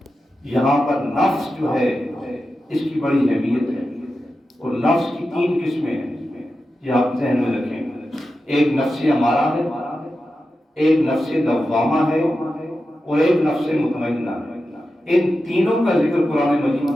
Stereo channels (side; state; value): both; normal; correlation 0.91